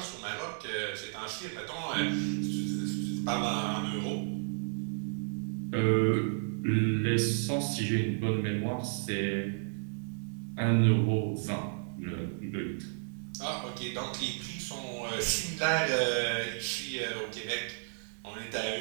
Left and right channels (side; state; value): left; silent; digital silence